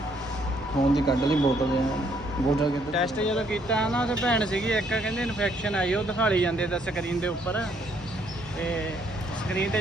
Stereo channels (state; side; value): noise; right; hum, 20 dB below the sound